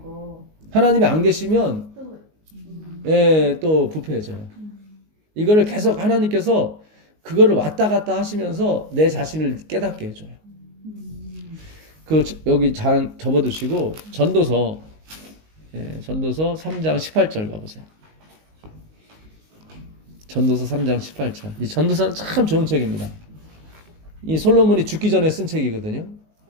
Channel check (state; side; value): late; left; 19 ms